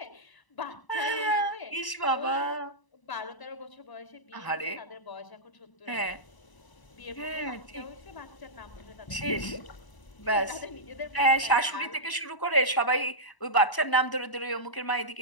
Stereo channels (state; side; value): late; right; 1.0 ms